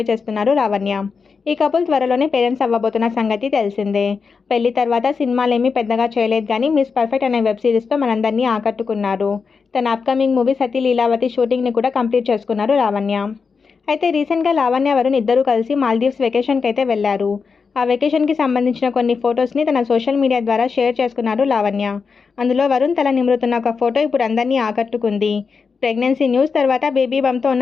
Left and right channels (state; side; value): quieter; right; 5.3 dB